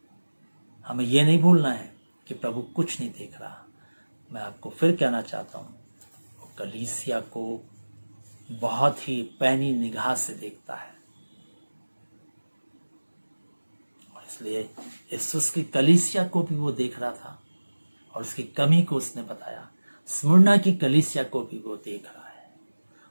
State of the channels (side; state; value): both; inverted; correlation -1.00